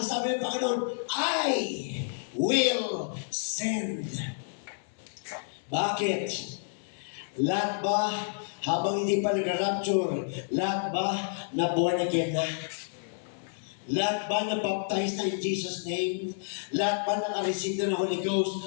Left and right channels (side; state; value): right; silent; 58 dB below the other